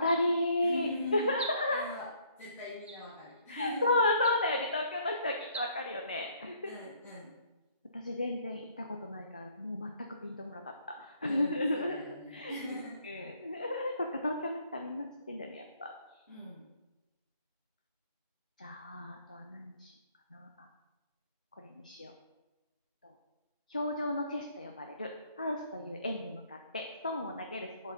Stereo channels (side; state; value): both; inverted; correlation -0.63